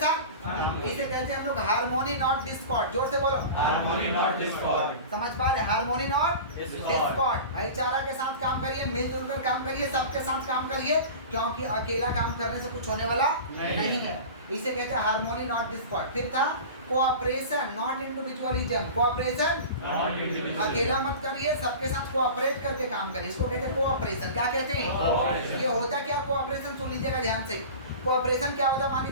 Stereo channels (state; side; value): inverted; both; correlation -0.35